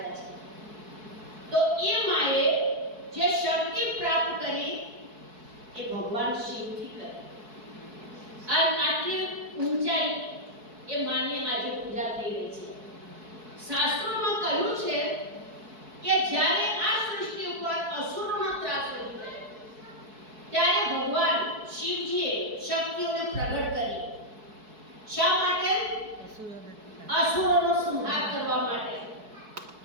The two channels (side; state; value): left; late; 4.6 ms